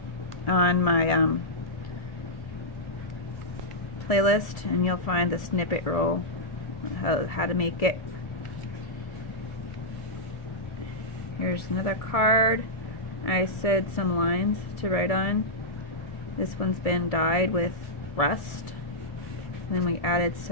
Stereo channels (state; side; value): late; right; 1.7 ms